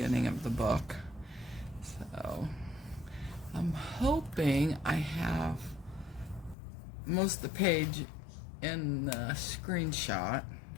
of the book. So I'm hoping I have most of the page in the screenshot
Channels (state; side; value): drops out; right; at 6.6 s